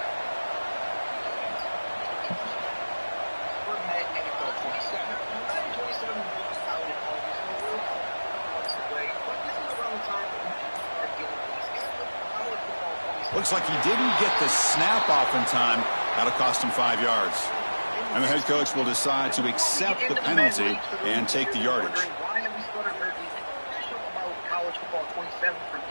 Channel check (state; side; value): inverted; both; correlation -1.00